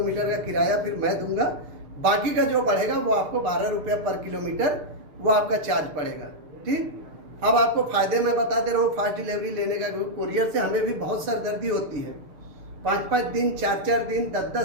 का किराया फिर मैं दूंगा। बाकी का जो बढ़ेगा वो आपको 12 रुपये पर किलोमीटर वो आपका चार्ज पड़ेगा, ठीक। अब आपको फ़ायदे मैं बता दे रहा हूँ फास्ट डिलीवरी लेने का। कोरियर से हमें भी बहुत सरदर्दी होती है, 5-5 दिन, 4-4 दिन,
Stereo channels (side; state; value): left; late; 6.7 ms